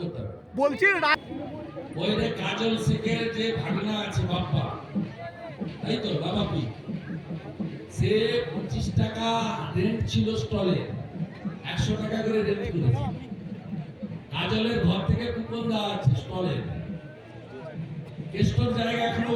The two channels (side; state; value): both; identical; correlation 1.00